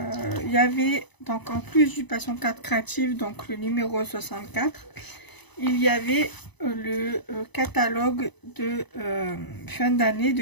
y avait, donc en plus du Passion 4 Créative, donc le numéro 64, il y avait le catalogue de fin d'année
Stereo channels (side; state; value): right; late; 1.0 ms